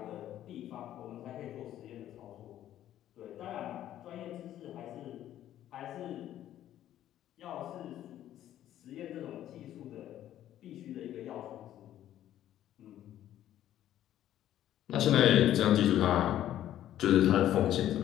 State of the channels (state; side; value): quieter; right; 12.2 dB